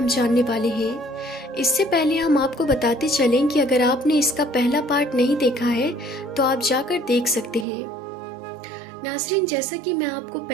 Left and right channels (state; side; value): drops out; left; at 7.7 s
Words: جاننے والے ہیں۔ اس سے پہلے ہم آپ کو بتاتے چلیں کہ اگر آپ نے اس کا پہلا پارٹ نہیں دیکھا ہے تو آپ جا کر دیکھ سکتے ہیں۔ ناظرین، جیسا کہ میں آپ کو